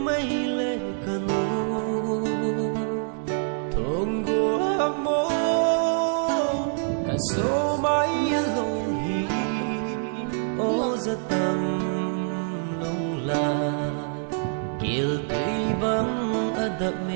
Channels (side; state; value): left; silent; 61 dB below the other